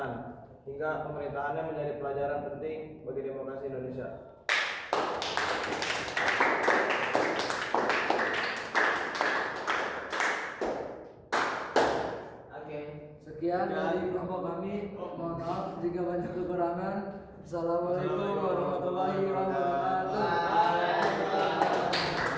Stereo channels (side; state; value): both; identical; correlation 1.00